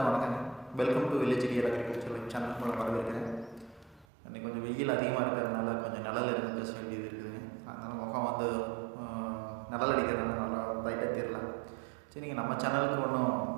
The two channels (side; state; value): left; drops out; at 4.0 s